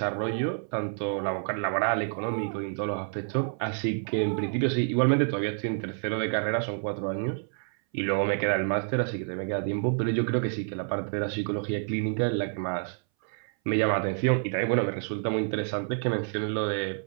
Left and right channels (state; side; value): silent; left; 59 dB below the other